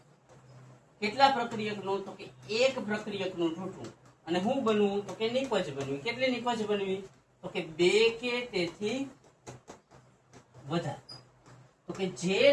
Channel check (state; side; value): identical; both; correlation 1.00